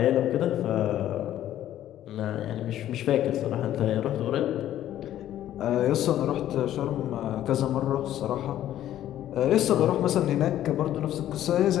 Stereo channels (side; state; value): right; quieter; 12.3 dB